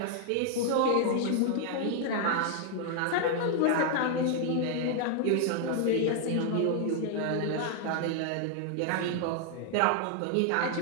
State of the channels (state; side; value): different; both; correlation 0.00